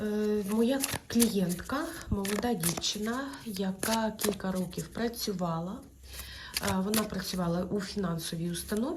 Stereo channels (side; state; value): both; identical; correlation 1.00